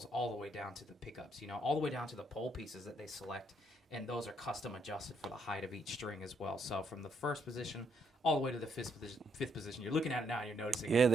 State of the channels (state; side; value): normal; both; correlation 0.73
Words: all the way down to the pickups, all the way down to the pole pieces that they select. And those are custom adjusted for the height of each string as well. So from the first position all the way to the fifth position. You're looking at it now and you're noticing. Yeah,